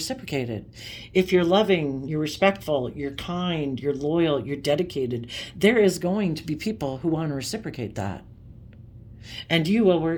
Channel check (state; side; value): identical; both; correlation 1.00